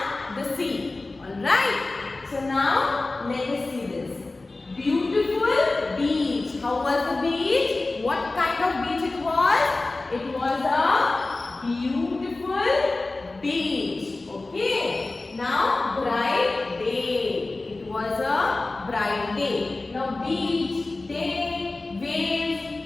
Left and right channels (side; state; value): right; quieter; 3.2 dB